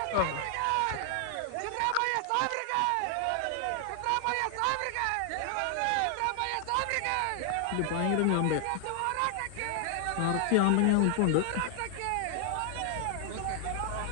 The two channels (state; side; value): different; both; correlation 0.00